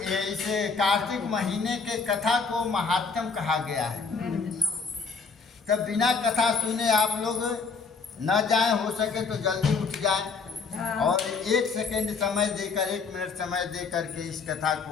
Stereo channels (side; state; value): right; quieter; 4.9 dB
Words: इसे कार्तिक महीने के कथा को महात्म कहा गया है। तब बिना कथा सुने आप लोग न जाएं, हो सके तो जल्दी उठ जाएं और 1 सेकंड समय देकर 1 मिनट समय देकर के इस कथा